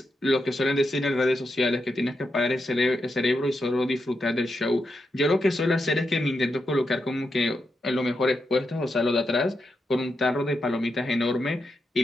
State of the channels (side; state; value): both; normal; correlation 0.86